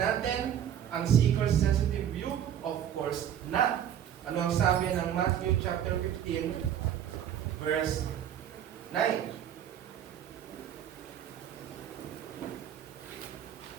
ang seeker-sensitive view? Of course not. Ano ang sabi ng Matthew chapter 15, verse 9?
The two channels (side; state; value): left; quieter; 9.9 dB